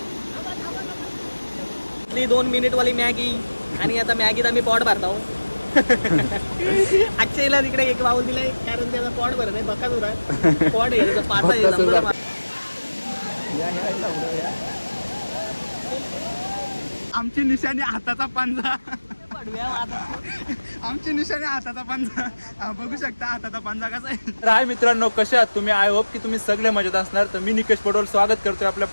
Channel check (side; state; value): both; inverted; correlation -1.00